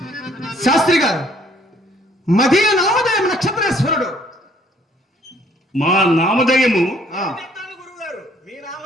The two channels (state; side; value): normal; both; correlation 0.62